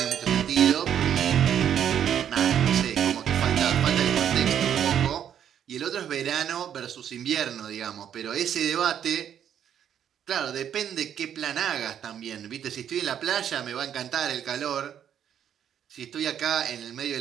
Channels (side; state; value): left; quieter; 9.3 dB